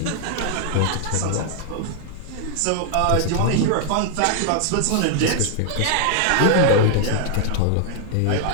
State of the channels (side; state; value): both; different; correlation 0.00